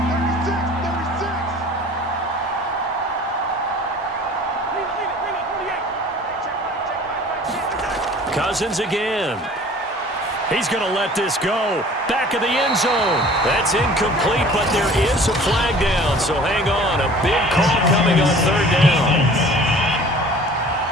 Cousins again. He's going to let this go. Back of the end zone. That's incomplete, but there is a flag down. So hang on. A big call coming on third down.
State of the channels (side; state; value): both; normal; correlation 0.47